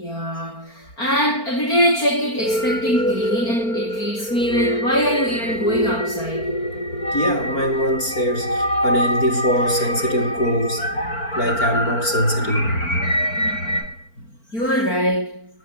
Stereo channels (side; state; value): right; late; 4.4 ms